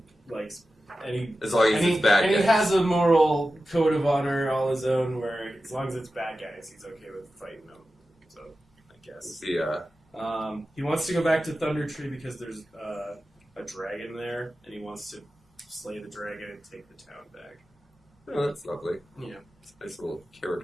likes... as long as it's bad guys. And he has a moral code of honor all his own where as long as it's bad guys, he's okay with fighting them. So, I guess. Yeah. He wants to go back to Thunder Tree because there's a dragon there, and he wants to slay the dragon and take the town back. Oh, that's lovely. Yeah. It's a nice little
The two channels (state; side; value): normal; both; correlation 0.93